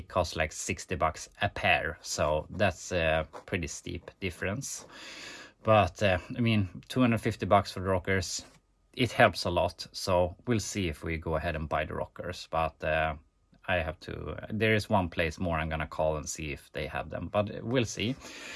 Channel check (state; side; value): identical; both; correlation 1.00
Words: cost like 60 bucks a pair, so that's a pretty steep difference. But I mean, 250 bucks for the rockers, it helps a lot. So we'll see if we go ahead and buy the rockers. But I have to, there is one place more I'm gonna call and see if they have them, but we'll see.